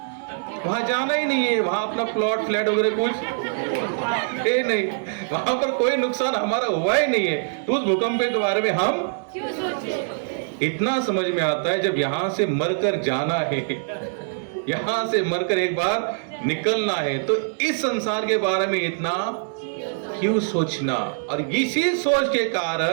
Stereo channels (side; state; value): left; silent; 63 dB below the other